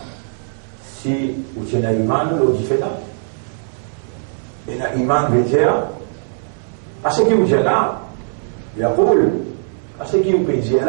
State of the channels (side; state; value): left; silent; 66 dB below the other